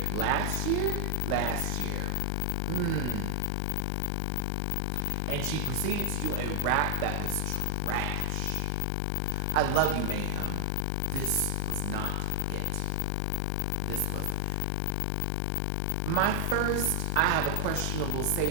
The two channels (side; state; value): both; different; correlation 0.00